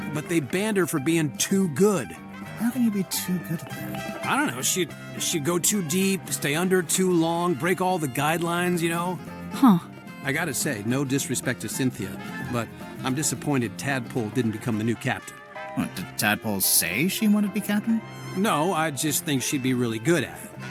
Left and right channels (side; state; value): both; identical; correlation 1.00